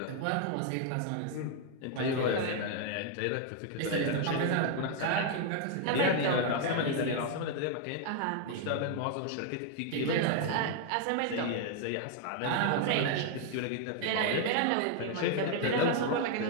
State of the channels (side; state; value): both; different; correlation 0.00